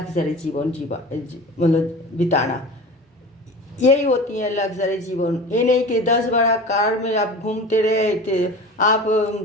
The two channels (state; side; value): normal; both; correlation 0.35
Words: जीवन मतलब बिताना। यही होती है लग्जरी जीवन। ये नहीं कि 10 बड़ा कार में आप घूमते रहे थे, आप